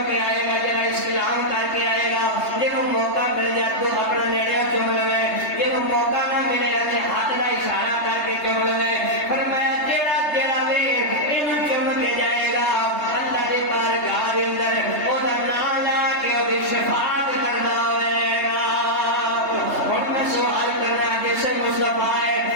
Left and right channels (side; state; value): right; late; 3.3 ms